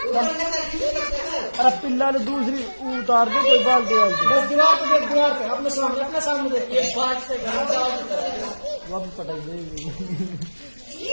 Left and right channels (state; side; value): inverted; both; correlation -1.00